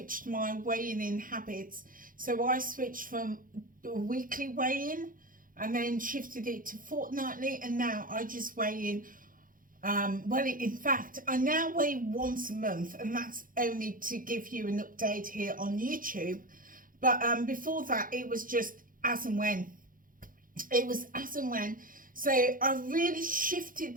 my weighing in habits. So I switched from weekly weigh-in and then shifted it to fortnightly, and now I just weigh in. Well, in fact, I now weigh once a month, and that's only to give you an update here on YouTube. But before that, it was just as and when. It was as and when. So I really shifted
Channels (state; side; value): late; left; 0.40 ms